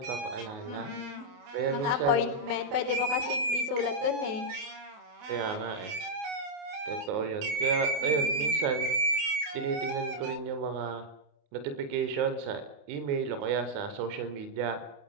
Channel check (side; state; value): left; late; 28 ms